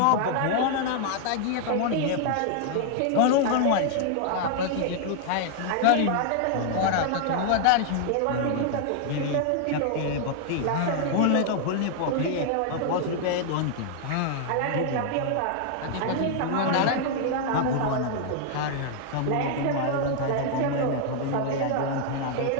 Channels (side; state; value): both; different; correlation 0.00